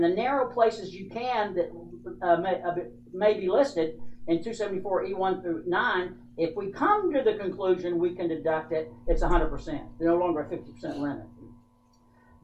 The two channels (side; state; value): both; identical; correlation 1.00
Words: the narrow places you can that may be listed in 274E1 through 9, if we come to the conclusion we can deduct it, it's 100%. No longer a 50% limit.